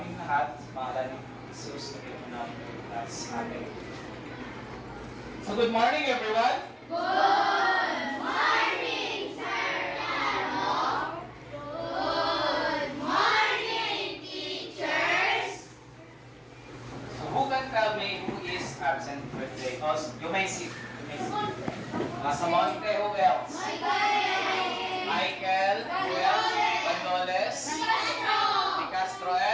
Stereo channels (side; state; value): both; identical; correlation 1.00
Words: lahat sa pangalan ni Jesus, na po namin at sa amin. So good morning everyone! Good morning, Sir Lalo. Good morning, teachers. So who can tell me who is absent for today? Oh, you may sit. Samonte, who else? Michael, who else? Bandoles, Di Castro,